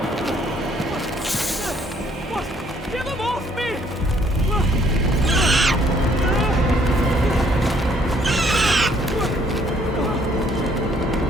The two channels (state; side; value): normal; both; correlation 0.65